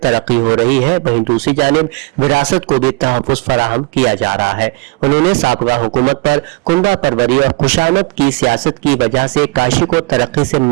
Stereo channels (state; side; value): quieter; left; 25.8 dB